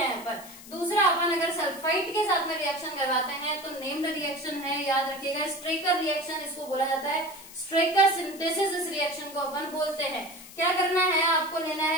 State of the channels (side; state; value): left; noise; hiss, 17 dB below the sound